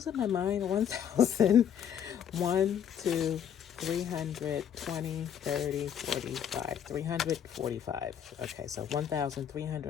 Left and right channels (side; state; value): right; quieter; 8.8 dB